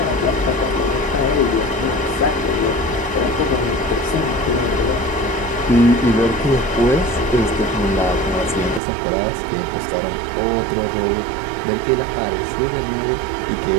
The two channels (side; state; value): left; drops out; at 8.8 s